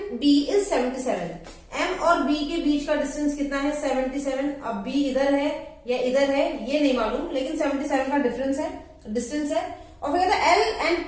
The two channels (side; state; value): both; identical; correlation 1.00